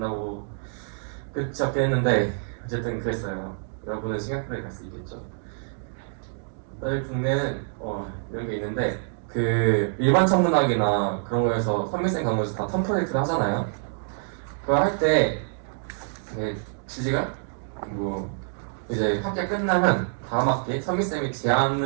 끝이 없긴 했는데 어쨌든 그랬어요. 여러분은 싱가포르에 갈 수 있겠죠. 저희 국내는 이런 게 있는데, 그 일반 천문학이나 그런 거에서 선밀생 과목에서 다 텀 프로젝트를 하잖아요. 그거 할 때 주제가 뭐 이제 학기 끝나면 다음 학기에 선밀쌤이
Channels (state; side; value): silent; left; digital silence